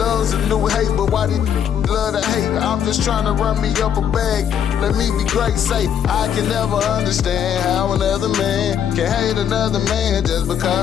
a new hate, but why these love to hate? I'm just trying to run me up a bag. Let me be great, say I can never understand how another man can hate another man just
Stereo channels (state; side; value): quieter; right; 8.8 dB